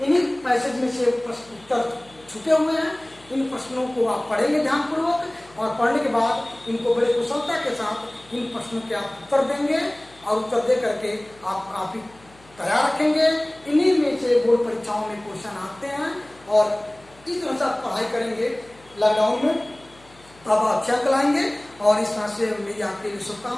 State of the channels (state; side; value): noise; left; hum, 27 dB below the sound